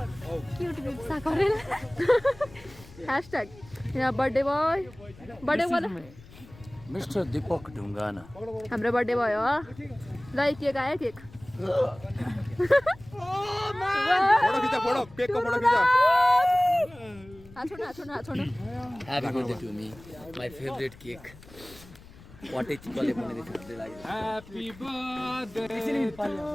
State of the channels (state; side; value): noise; left; rumble, 21 dB below the sound